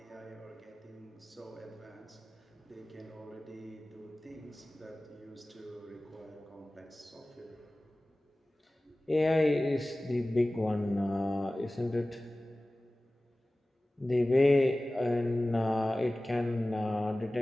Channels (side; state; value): both; normal; correlation 0.97